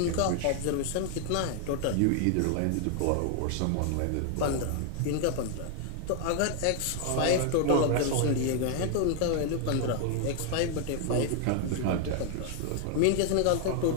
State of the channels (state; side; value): different; both; correlation 0.00